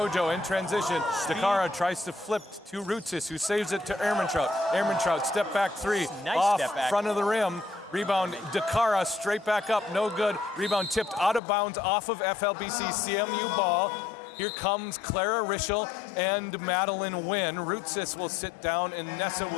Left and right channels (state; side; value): drops out; right; at 11.4 s